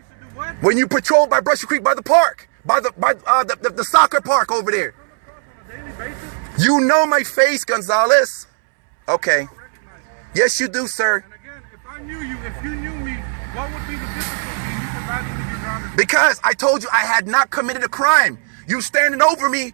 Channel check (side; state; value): left; silent; 66 dB below the other